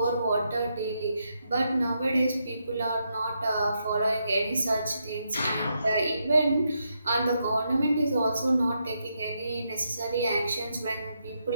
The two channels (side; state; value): both; inverted; correlation -0.81